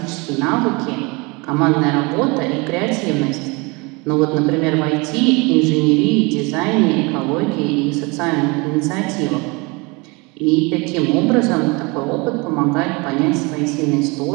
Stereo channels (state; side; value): quieter; left; 27.2 dB